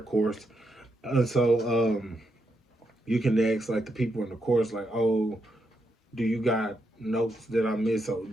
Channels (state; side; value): normal; both; correlation 0.81